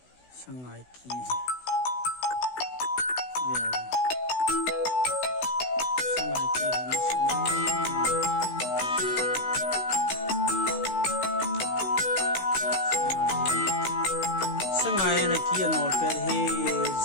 sangai ki sangai na ki nol per he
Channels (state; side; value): late; right; 16 ms